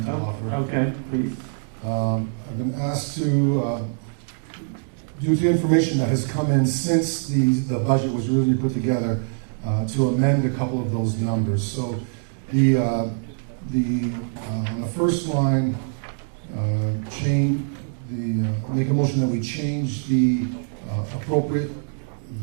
to offer. Okay, please. I've been asked to, due to information that has come in since the budget was really put together, to amend a couple of those numbers. So on the first line, make a motion that we change the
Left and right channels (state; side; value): silent; left; 63 dB below the other